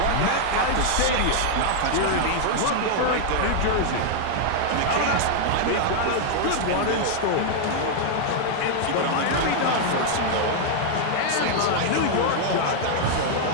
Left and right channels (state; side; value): different; both; correlation 0.00